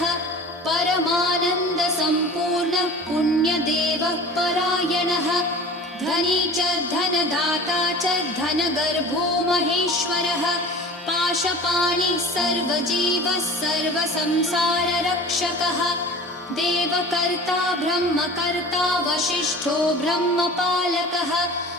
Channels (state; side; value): normal; both; correlation 0.40